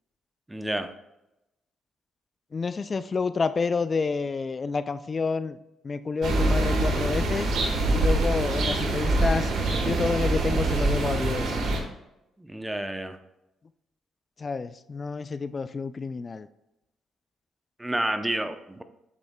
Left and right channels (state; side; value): normal; both; correlation 0.82